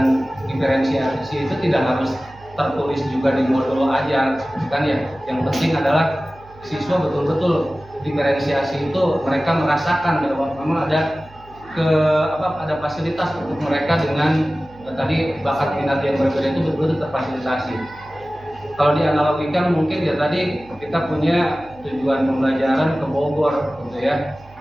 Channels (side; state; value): right; noise; hum, 24 dB below the sound